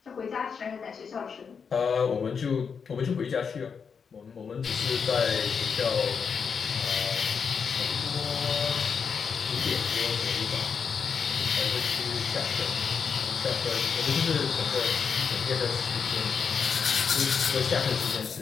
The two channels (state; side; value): quieter; right; 6.2 dB